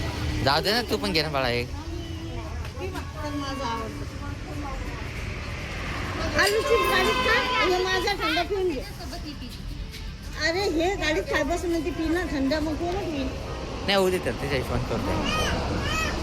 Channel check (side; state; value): both; identical; correlation 1.00